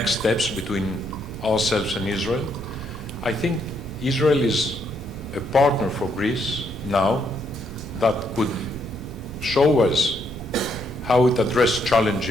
steps between ourselves and Israel. I think Israel is a partner for Greece now that could show us how it addressed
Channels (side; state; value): right; noise; rumble, 13 dB below the sound